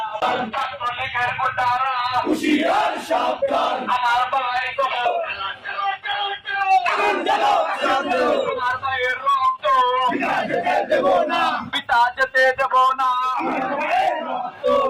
ছাত্রলীগের গুন্ডারা, হুঁশিয়ার সাবধান, আমার ভাই কবর, আমার ভাইয়ের রক্ত, দেব না, পিতা যেতে দেব না, আমার ভাইয়ের রক্ত,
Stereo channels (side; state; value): both; identical; correlation 1.00